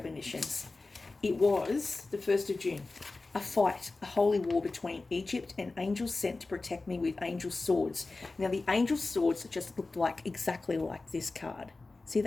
It was the 1st of June. a fight, a holy war between Egypt and angels sent to protect me with angel swords. Now, the angel swords just looked like exactly like this card. See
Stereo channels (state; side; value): quieter; right; 3.5 dB